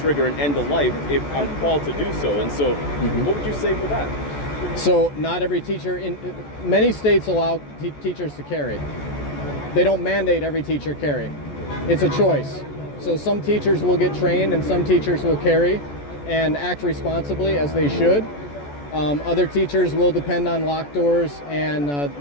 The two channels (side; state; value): right; late; 14 ms